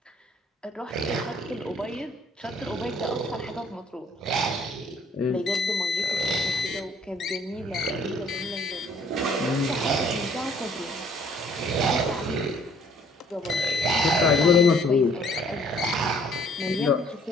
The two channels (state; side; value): normal; both; correlation 0.59